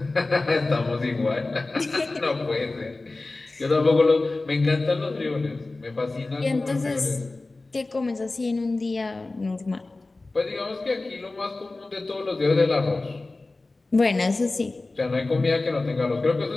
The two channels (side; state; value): right; quieter; 3.2 dB